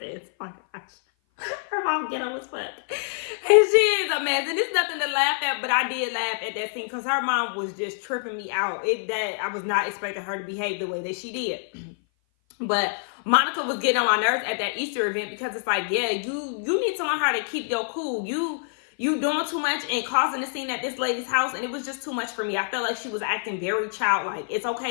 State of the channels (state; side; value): silent; right; 56 dB below the other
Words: Oh my gosh. Her mom ghetto as fuck. And she is a mess. And it's nothing to laugh at, but I did laugh at that scene because her mom was just tripping me out. That I was not expecting her to behave the way that she did. But Monica was getting on my nerves at that Easter event because it's like, yeah, you need to learn how to keep your cool. You doing too much and causing a scene at this lady's house, and it was just too much for me. I felt like she was acting very childlike. It's